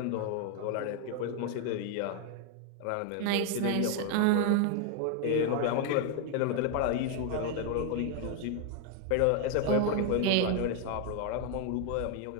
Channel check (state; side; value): different; both; correlation 0.01